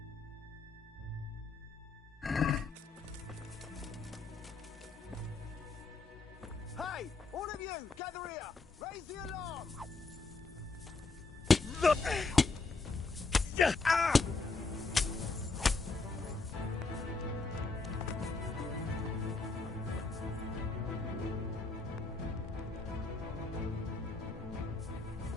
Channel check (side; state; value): right; quieter; 3.9 dB